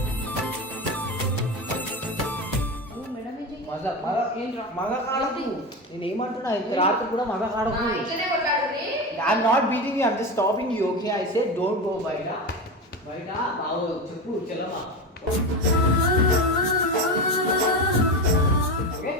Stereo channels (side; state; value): both; normal; correlation 0.21